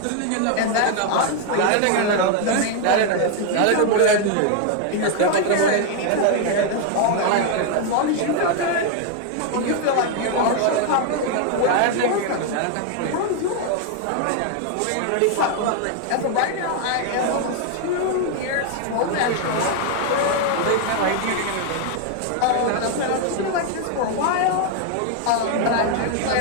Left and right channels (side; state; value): both; different; correlation 0.00